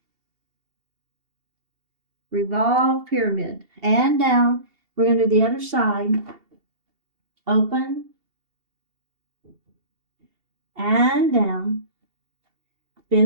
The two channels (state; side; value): late; left; 2.7 ms